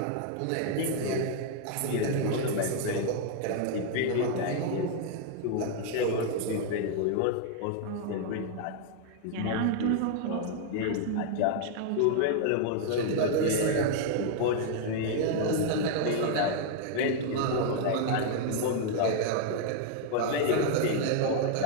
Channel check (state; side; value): different; both; correlation 0.00